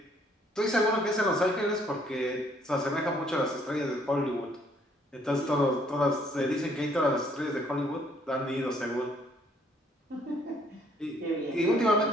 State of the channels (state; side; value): normal; both; correlation 0.65